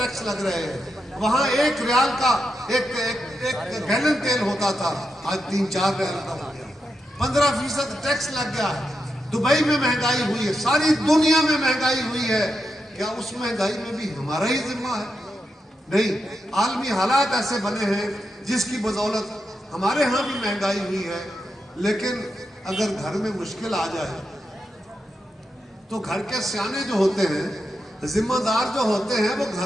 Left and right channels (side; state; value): both; normal; correlation 0.86